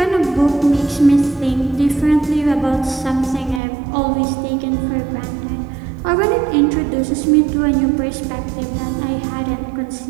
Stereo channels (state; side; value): drops out; left; at 3.6 s